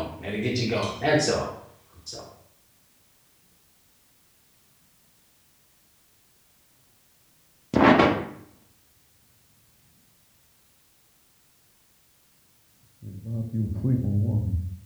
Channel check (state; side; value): identical; both; correlation 1.00